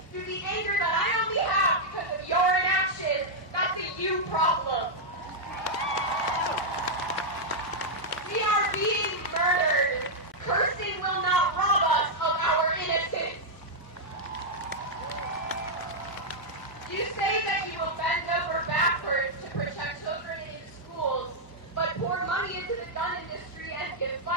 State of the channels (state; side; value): normal; both; correlation -0.05